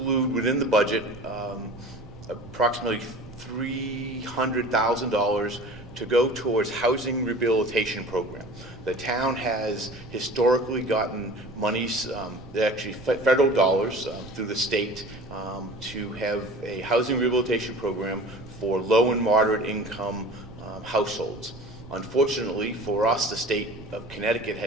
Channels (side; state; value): right; noise; rumble, 17 dB below the sound